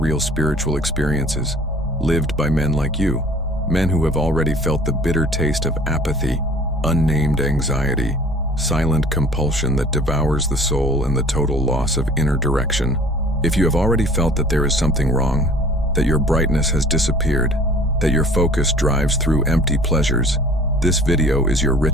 spiritual experiences, lived by men like you, men who have already felt the bitter taste of apathy, unnamed anxiety, silent compulsion that devours the soul, and the total loss of inner direction. If you have already felt that there is something wrong, that your brightness has disappeared, that your focus drives through empty pleasures, this video is your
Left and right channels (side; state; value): both; normal; correlation 0.49